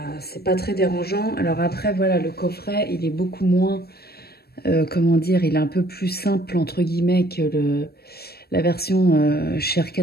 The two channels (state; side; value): late; right; 0.46 ms